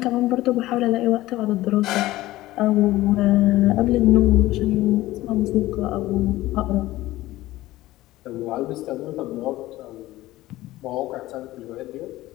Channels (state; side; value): quieter; right; 16.9 dB